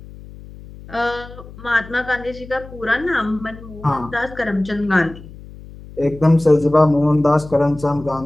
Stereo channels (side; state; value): left; noise; hum, 17 dB below the sound